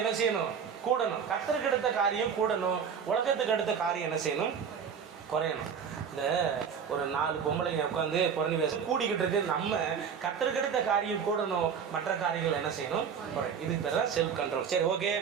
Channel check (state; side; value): quieter; left; 7.0 dB